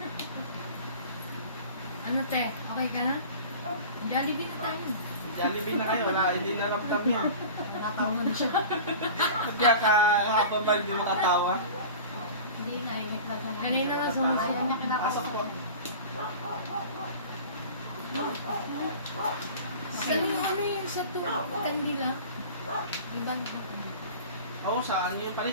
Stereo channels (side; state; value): both; inverted; correlation -0.37